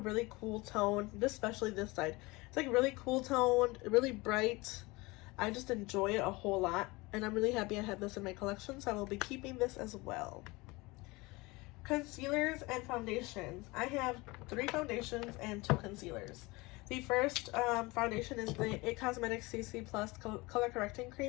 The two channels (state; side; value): quieter; right; 23.4 dB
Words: cool tone, especially this side. It's like really cool toned, really bright. I just enjoy it a whole lot, and I'm really happy I have this in my collection, so I will be keeping this as well. Concealers and foundations. I have 3 foundations and 2 concealers. The first foundation is the It Cosmetics CC Plus Color Correcting